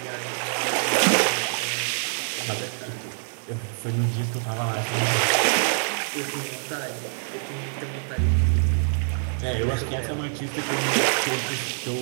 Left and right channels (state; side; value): silent; left; digital silence